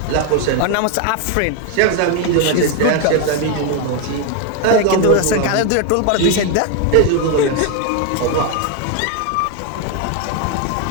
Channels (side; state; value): both; different; correlation 0.01